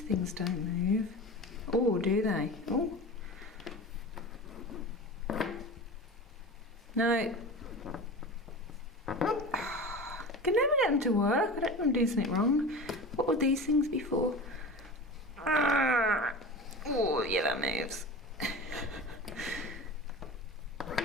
things don't move. Oh, do they? Oh. No. Can never get them to work. I don't think I'm doing something wrong. What were these things before? Oh, yeah, that moves.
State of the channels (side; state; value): both; normal; correlation 0.32